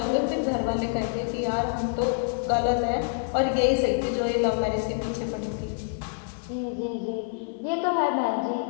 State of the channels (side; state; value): right; silent; digital silence